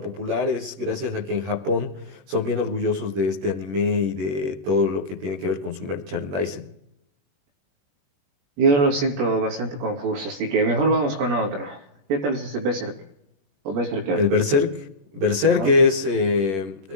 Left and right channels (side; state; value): left; late; 21 ms